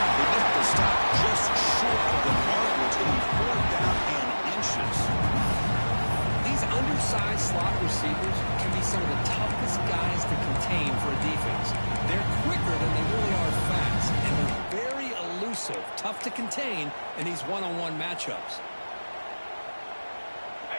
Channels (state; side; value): inverted; both; correlation -1.00